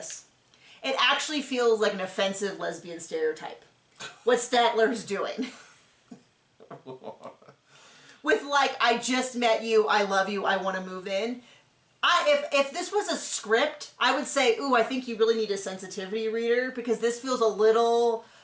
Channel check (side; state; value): both; identical; correlation 1.00